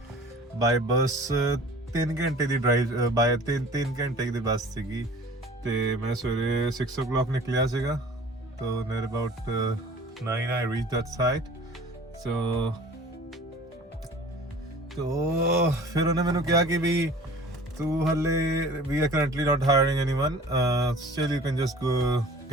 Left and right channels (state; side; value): normal; both; correlation 0.45